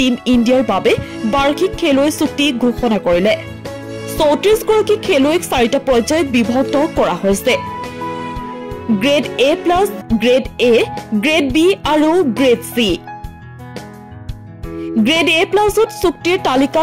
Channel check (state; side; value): identical; both; correlation 1.00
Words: ইণ্ডিয়াৰ বাবে বাৰ্ষিক খেলুৱৈ চুক্তি ঘোষণা কৰিলে। 34 গৰাকী খেলুৱৈক 4টা পৰ্যায়ত বিভক্ত কৰা হৈছে। Grade A+, grade A, grade B আৰু গ্ৰেড C। গ্ৰেড A+ত চুক্তিৰ